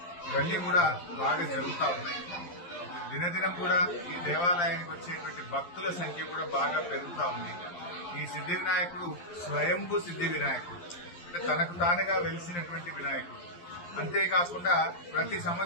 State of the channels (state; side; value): late; right; 11 ms